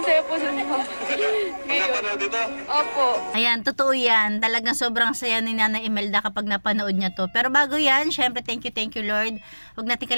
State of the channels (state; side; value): inverted; both; correlation -1.00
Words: saya po sa mga. Ngayon. Napanood dito? Opo. Ayan, totoo yan. Talagang sobrang saya ni Nanay Imelda kapag napanood niya to. Pero bago yan, syempre thank you Lord. Huwag natin